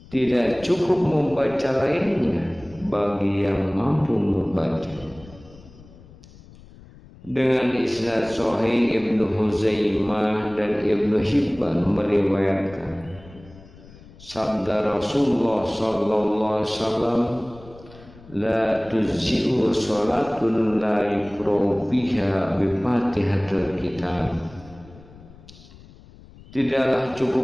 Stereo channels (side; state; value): left; noise; rumble, 21 dB below the sound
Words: Tidak cukup membaca lainnya bagi yang mampu membaca. Dengan isnad sahih, Ibnu Huzaimah dan Ibnu Hibban meriwayatkan sabda Rasulullah sallallahu alaihi wasallam, la tuzzi'u salatun la yuqra'u fiha bi Fatihatil Kitab. Tidaklah